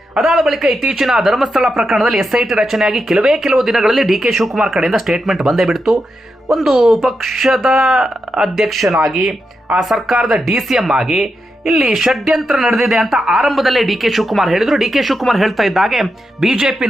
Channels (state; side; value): normal; both; correlation 0.86